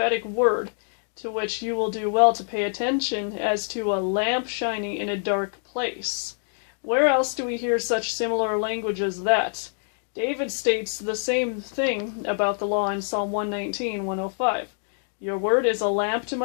word, to which you will do well to pay attention as to a lamp shining in a dark place." Where else do we hear such similar language as that? David states the same thing about the law in Psalm 119, 105. "Your word is a lamp to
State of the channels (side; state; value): right; silent; digital silence